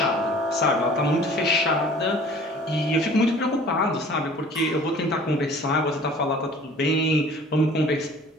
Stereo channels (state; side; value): normal; both; correlation 0.48